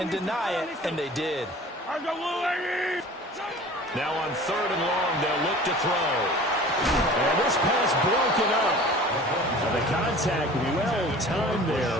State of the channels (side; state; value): both; normal; correlation 0.43